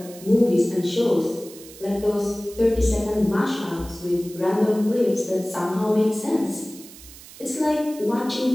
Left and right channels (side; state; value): right; noise; hiss, 18 dB below the sound